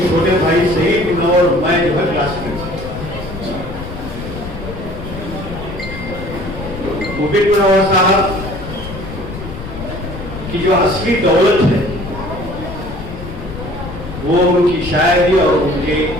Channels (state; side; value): noise; left; rumble, 10 dB below the sound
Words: چھوٹے بھائی سعید منور میں جو ہے کلاس میں مبین منور صاحب کی جو اصلی دولت ہے وہ ان کی شاعری اور ان کے